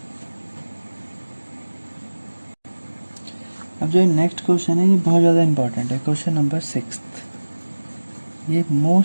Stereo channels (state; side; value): inverted; both; correlation -1.00